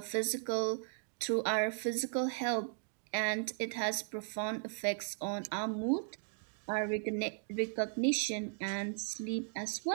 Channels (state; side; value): silent; left; digital silence